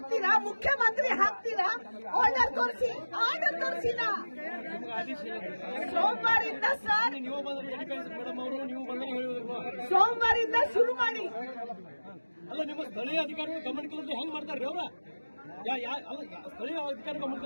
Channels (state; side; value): inverted; both; correlation -1.00